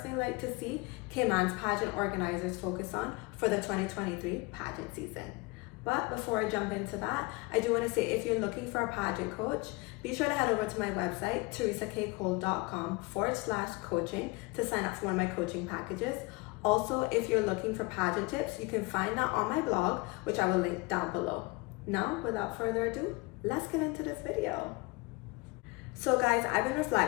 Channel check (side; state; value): right; quieter; 24.8 dB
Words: like to see Cayman's pageant organizers focus on for the 2023 pageant season. But before I jump into that, I do want to say if you're looking for a pageant coach, be sure to head over to my website, theresakcole.com/coaching to sign up for one of my coaching packages. Also, if you're looking for pageant tips, you can find that on my blog, which I will link down below. Now, without further ado, let's get into this video. So guys, I've been